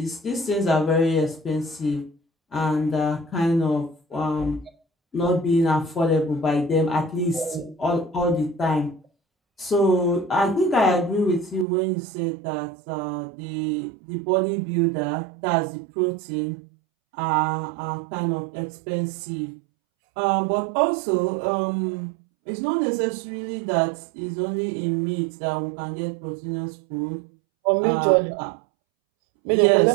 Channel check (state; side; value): drops out; left; at 11.7 s